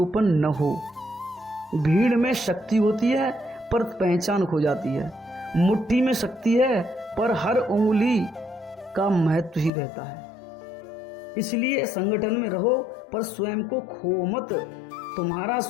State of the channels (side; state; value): right; drops out; at 9.7 s